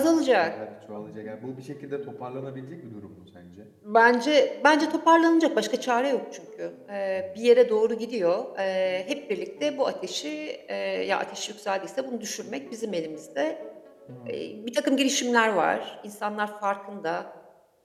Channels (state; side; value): identical; both; correlation 1.00